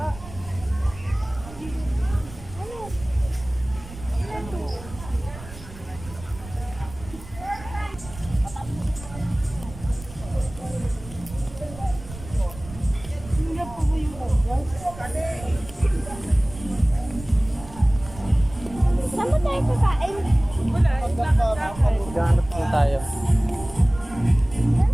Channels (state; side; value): noise; right; rumble, 15 dB below the sound